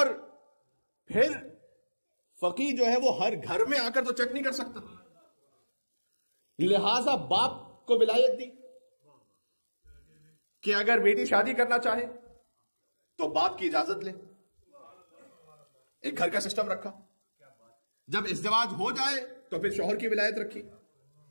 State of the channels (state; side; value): inverted; both; correlation -1.00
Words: پھر فقیہ جو ہے وہ ہر گھر میں آ کر تو چیک نہیں کر سکتا، لہذا باپ کو ولایت دی کہ اگر بیٹی شادی کرنا چاہے تو باپ کی اجازت لے. ایک گھر کا سسٹم رکھا. جب ازدواج ہو جائے تو پھر شوہر کی ولایت رکھی.